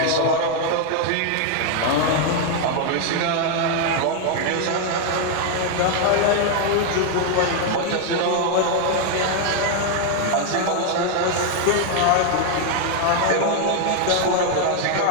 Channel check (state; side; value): different; both; correlation 0.01